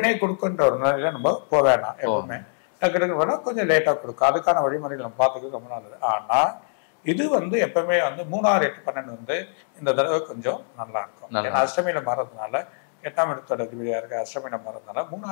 கொடுக்குன்ற ஒரு நிலையில நம்ம போக வேணாம். எப்பவுமே டக்கு வேணா கொஞ்சம் லேட்டா கொடுக்கும். அதுக்கான வழிமுறைகள் நம்ம பார்த்துக்கிறது ரொம்ப நல்லது. ஆனா இது வந்து எப்பவுமே வந்து 3, 6, 8, 12 வந்து இந்த தடவை கொஞ்சம் நல்லா இருக்கும். ஏன்னா அஷ்டமியில மாறதுனால 8ஆம் இடத்தோட அதிபதியா இருக்க அஷ்டமியில மாறதுனால 3,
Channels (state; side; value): silent; right; 63 dB below the other